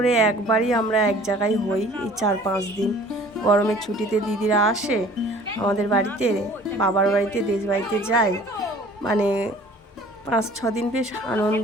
একবারই আমরা এক জায়গায় হই, এই 4-5 দিন গরমের ছুটিতে দিদিরা আসে আমাদের বাড়িতে, বাবার বাড়িতে, দেশ বাড়িতে যায়, 5-6 দিন বেশ আনন্দ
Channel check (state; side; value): normal; both; correlation 0.50